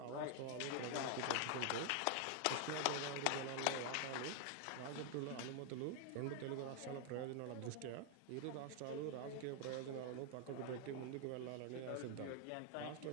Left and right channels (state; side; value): different; both; correlation 0.00